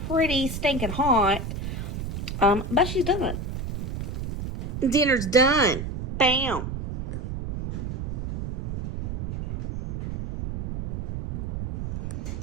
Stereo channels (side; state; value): right; noise; rumble, 4 dB below the sound